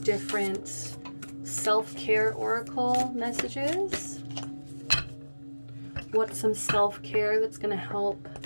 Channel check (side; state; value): both; inverted; correlation -1.00